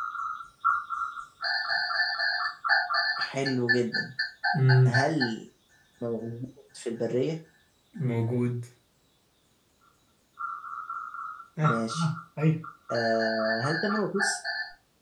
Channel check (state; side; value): identical; both; correlation 1.00